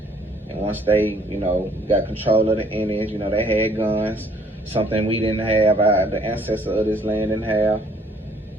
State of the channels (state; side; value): normal; both; correlation 0.61